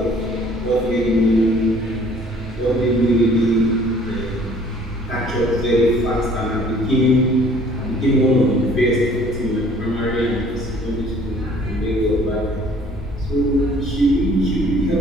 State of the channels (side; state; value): both; normal; correlation 0.56